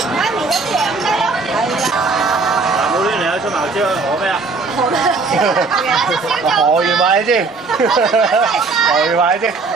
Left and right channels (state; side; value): quieter; left; 4.1 dB